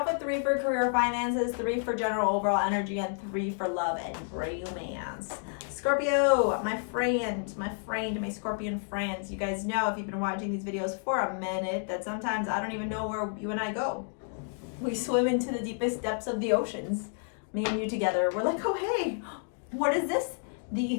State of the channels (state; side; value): silent; right; 58 dB below the other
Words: with 3 for career finances, 3 for general overall energy, and 3 for love and romance. Scorpio, my my Scorpion friends. You guys know, if you've been watching these videos for a minute, that sometimes I don't even know where you and I go. We swim into the deepest depths of the oceans. Me and you together. We're like, oh hey, what is this? The